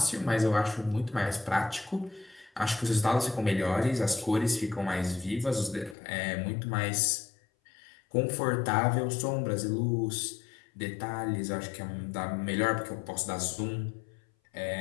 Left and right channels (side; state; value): right; drops out; at 6.0 s